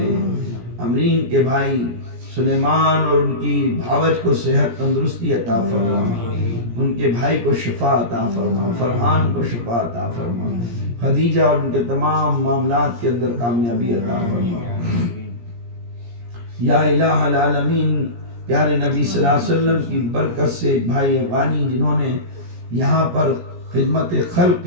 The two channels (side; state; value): left; late; 17 ms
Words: امرین کے بھائی سلیمان اور ان کی بھاوج کو صحت تندرستی عطا فرما، ان کے بھائی کو شفا عطا فرما، فرحان کو شفا عطا فرما، خدیجہ اور ان کے تمام معاملات کے اندر کامیابی عطا فرما، یا الہ العالمین پیارے نبی صلی اللہ علیہ وسلم کی برکت سے بھائی افغانی جنہوں نے یہاں پر خدمت خلق